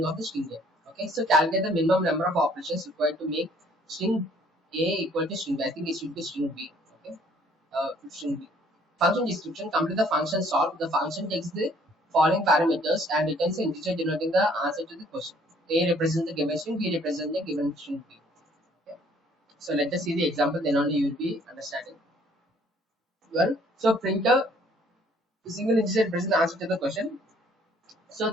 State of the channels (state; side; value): normal; both; correlation 0.60